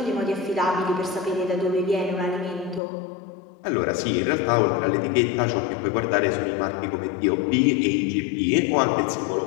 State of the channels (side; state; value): right; drops out; at 2.8 s